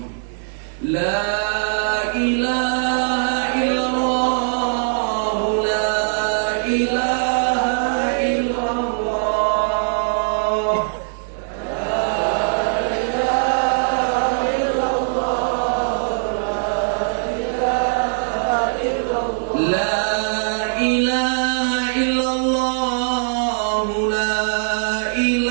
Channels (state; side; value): silent; left; digital silence